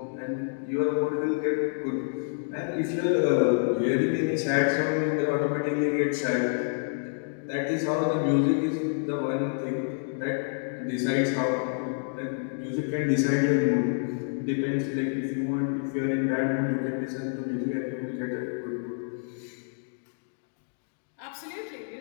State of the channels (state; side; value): silent; right; digital silence